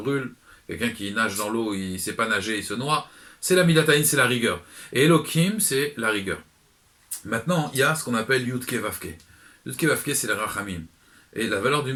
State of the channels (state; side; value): identical; both; correlation 1.00